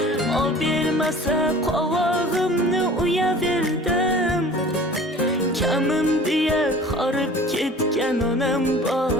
O bermasa qovog'imni uyaverdim. Kamim deya horib ketgan onam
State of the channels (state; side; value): normal; both; correlation 0.44